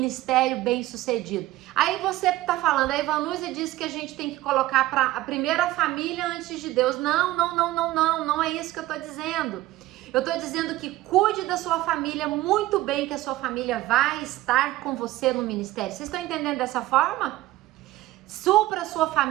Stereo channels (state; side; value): quieter; left; 16.6 dB